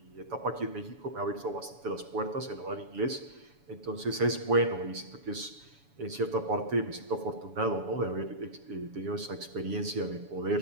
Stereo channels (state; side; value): late; left; 7.0 ms